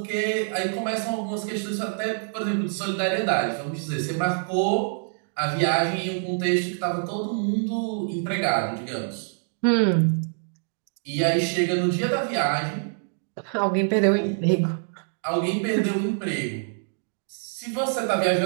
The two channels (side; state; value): left; silent; digital silence